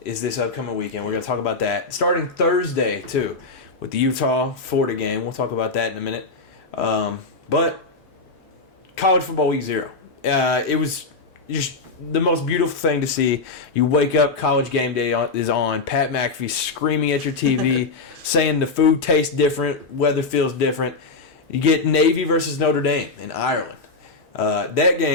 is this upcoming weekend. We're going to talk about that. Starting Thursday, too, with the Utah-Florida game. We'll talk about that in a minute. But college football week 0. It was just the most beautiful thing to see. You wake up, college game day is on. Pat McAfee screaming at your TV, saying the food tastes different, weather feels different. You get Navy versus Notre Dame in Ireland. That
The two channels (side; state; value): right; quieter; 3.8 dB